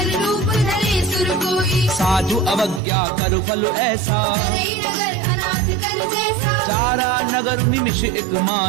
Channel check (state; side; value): drops out; left; at 2.8 s